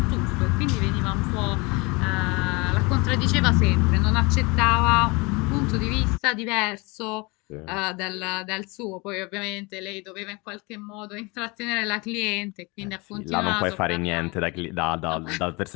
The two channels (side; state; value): right; quieter; 26.8 dB